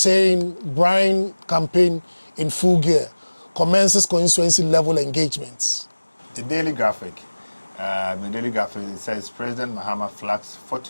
Brian campaign in full gear, commences constituency level engagements. the daily graphic. It says President Mahama flags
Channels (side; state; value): both; inverted; correlation -1.00